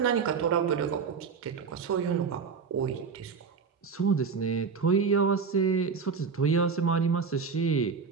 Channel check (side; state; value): left; quieter; 5.6 dB